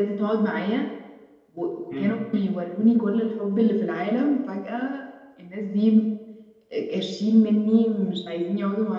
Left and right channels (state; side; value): identical; both; correlation 1.00